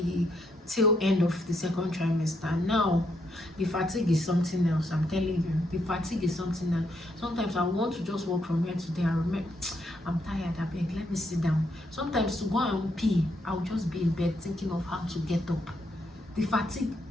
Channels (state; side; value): normal; both; correlation 0.76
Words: tail end of the second trimester. Now the fatigue is something else. I'm telling you, the fatigue is something else. Sometimes I want to just walk from here to there. I remember, I'm tired, I beg, let me sit down. Sometimes to go and pee, I'll just be in bed thinking of how to get up. The fatigue